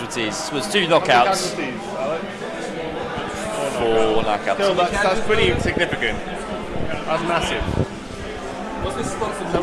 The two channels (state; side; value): identical; both; correlation 1.00